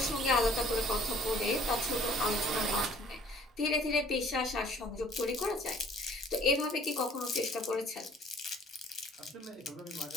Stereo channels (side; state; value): both; normal; correlation 0.55